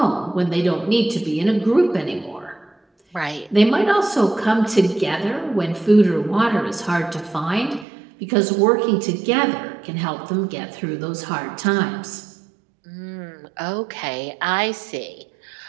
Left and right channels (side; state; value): left; drops out; at 7.9 s